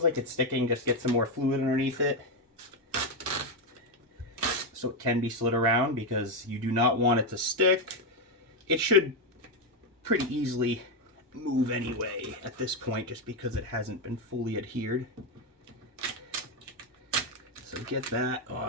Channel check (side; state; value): both; normal; correlation 0.07